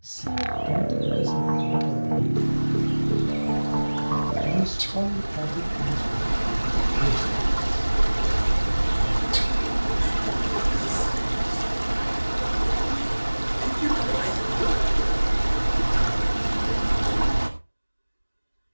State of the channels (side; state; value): both; inverted; correlation -1.00